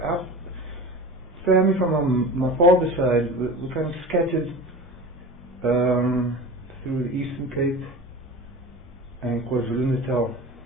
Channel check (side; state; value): both; normal; correlation 0.33